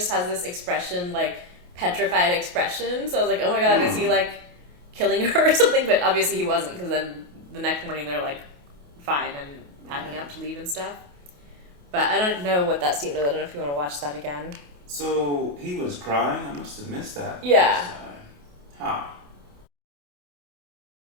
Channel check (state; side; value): late; left; 28 ms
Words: has this expression, like petrified expression. So I was like, oh my god, is he like killing her or something? But obviously he wasn't, because then the next morning they're like fine and packing up to leave and stuff. But I don't know what that scene was. I don't know if you want to watch that again. So he was crying? I must have missed that. Yeah. Huh.